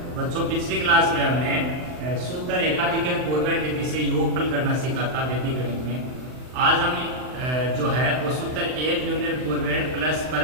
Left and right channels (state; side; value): late; left; 39 ms